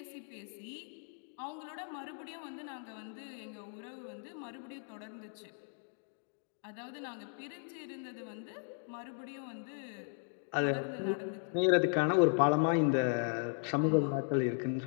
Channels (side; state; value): right; silent; 53 dB below the other